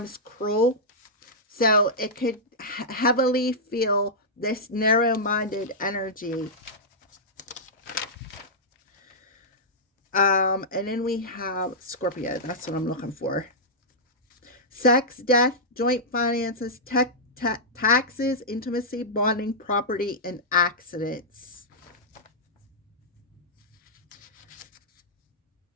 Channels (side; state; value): both; normal; correlation -0.11